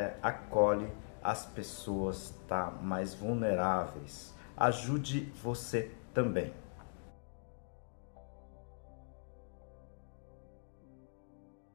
acolhe as pessoas, tá? Mais vulneráveis. Ajude você também.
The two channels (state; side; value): silent; right; digital silence